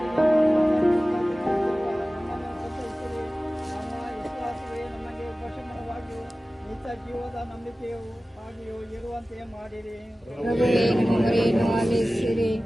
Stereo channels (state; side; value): normal; both; correlation 0.96